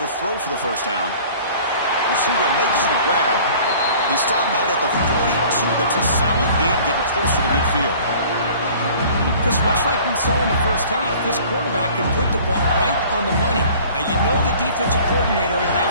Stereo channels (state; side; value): inverted; both; correlation -0.48